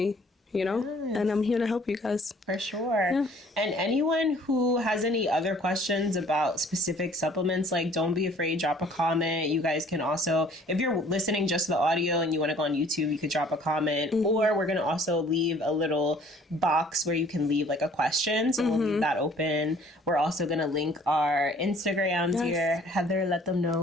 you know, and I'm here to help you guys. For sure. And anyone who has any other questions about specific supplements, like, don't be afraid, drop a comment. You guys can also, if you're listening just to the audio and you want to go on YouTube, you could drop a comment, or we're going to also leave a little box where you can leave, like, a question. So we'll leave that open. We're also going to link our Instagrams here. Heather, let them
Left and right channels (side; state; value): both; normal; correlation 0.55